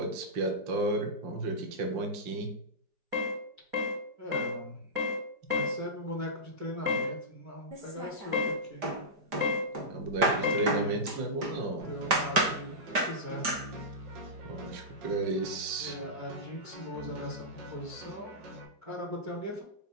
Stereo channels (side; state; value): left; late; 5.0 ms